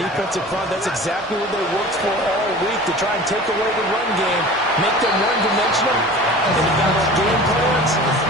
front. That's exactly what they worked for all week, to try and take away the run game, make them one-dimensional. And the balanced game plans,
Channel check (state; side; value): normal; both; correlation 0.40